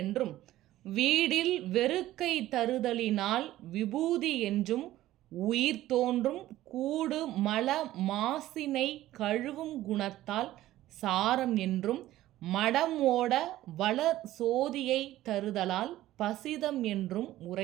வீடில் வெறுக்கை தருதலினால் விபூதி என்றும், உயிர் தோன்றும் கூடு மல மாசினை கழுவும் குணத்தால் சாரம் என்றும், மடம் ஓட வளர் சோதியை தருதலால் பசிதம் என்றும்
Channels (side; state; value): left; quieter; 14.9 dB